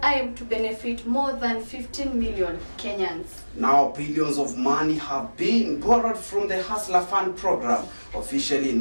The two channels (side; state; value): both; inverted; correlation -1.00